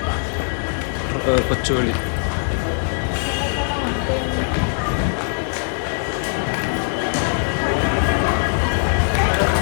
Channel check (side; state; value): right; silent; 65 dB below the other